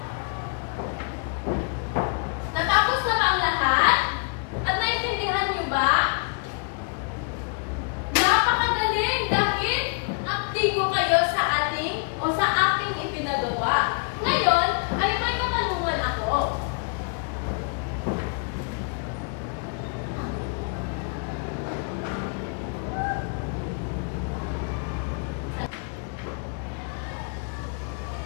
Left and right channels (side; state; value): right; quieter; 36.1 dB